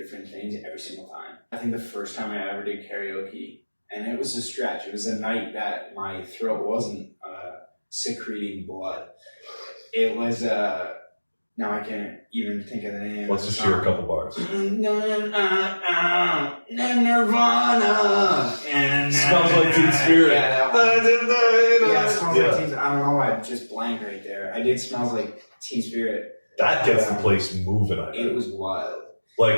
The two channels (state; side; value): inverted; both; correlation -1.00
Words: things every single time. I think the first time I ever did karaoke, and it was a stretch. It was a night that my throat wasn't secreting blood. It was now I can't even think of the name. Let's just hear a couple bars. Nirvana. Smells like Teen Spirit. Yeah, that one. Yeah, it smells Yeah. like Teen. I don't know why I just blanked right there. I did Smells Like Teen Spirit. That gets the place moving, I It think. was wild.